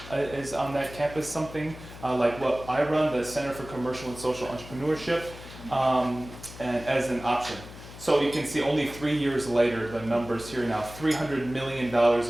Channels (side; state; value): left; noise; hum, 15 dB below the sound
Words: is on that campus, something like what I run, the Center for Commercial and Social Entrepreneurship, and as an option. So you can see only 3 years later, the numbers here now, $300 million